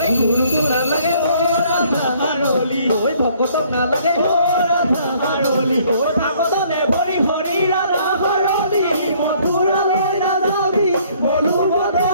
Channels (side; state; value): both; inverted; correlation -0.61